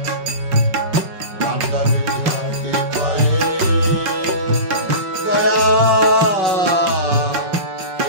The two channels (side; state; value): left; late; 5.3 ms